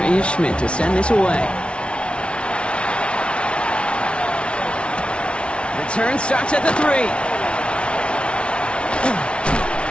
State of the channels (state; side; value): late; right; 0.059 ms